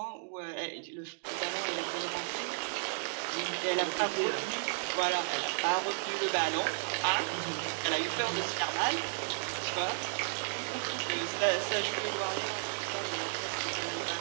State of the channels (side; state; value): left; silent; digital silence